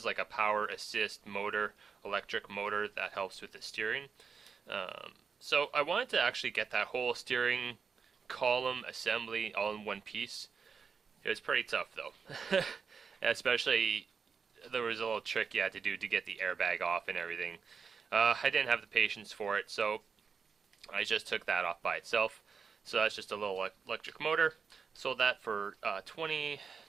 like a power assist motor, electric motor that helps with the steering. So I wanted to actually get that whole steering column assembly all in one piece. It was pretty tough though. Especially, there was a little trick you had to do to get the airbag off and everything. I didn't have the patience for it, so I just took that off by itself. So that's just a little electric motor. Sold that for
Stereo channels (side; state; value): left; quieter; 5.8 dB